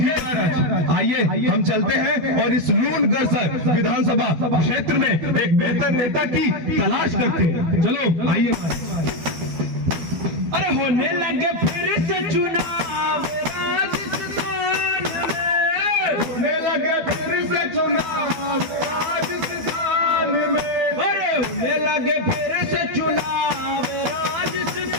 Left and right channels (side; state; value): left; late; 12 ms